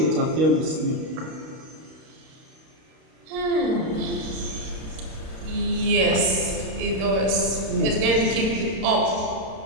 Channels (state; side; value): late; left; 32 ms